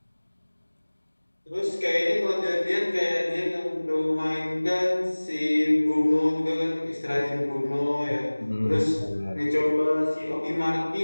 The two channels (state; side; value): inverted; both; correlation -1.00